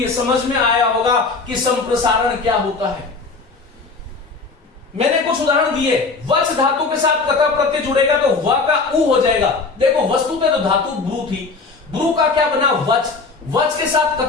समझ में आया होगा कि संप्रसारण क्या होता है। मैंने कुछ उदाहरण दिए। वच धातु के साथ कता प्रत्यय जुड़ेगा तो व का उ हो जाएगा। देखो वस्तु पे तो धातु ब्रू थी, ब्रू का क्या बना? वच। वच के साथ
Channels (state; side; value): quieter; right; 4.2 dB